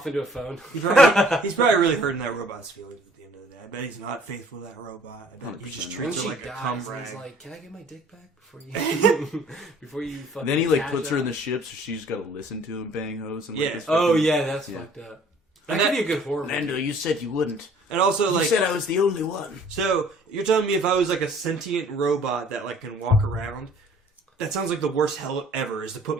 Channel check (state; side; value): normal; both; correlation 0.55